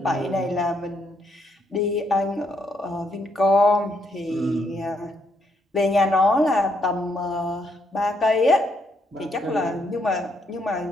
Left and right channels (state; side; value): normal; both; correlation 0.74